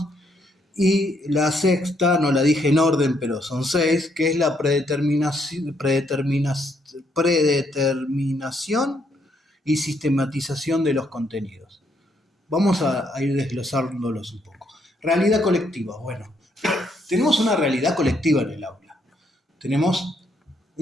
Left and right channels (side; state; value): both; normal; correlation 0.73